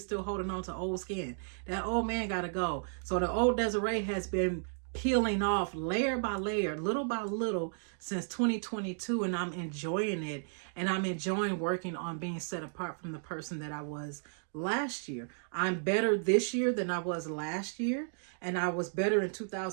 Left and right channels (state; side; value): silent; left; digital silence